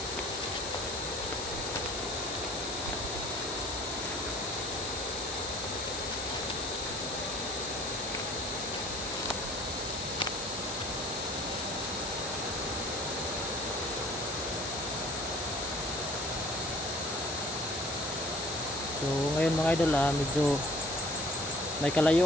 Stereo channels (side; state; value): left; noise; hiss, 6 dB below the sound